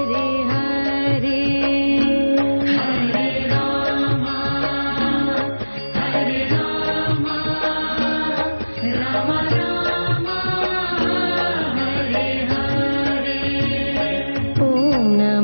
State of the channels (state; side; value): inverted; both; correlation -1.00